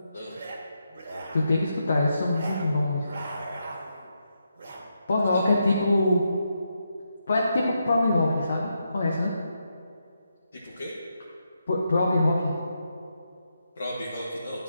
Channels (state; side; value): inverted; both; correlation -0.83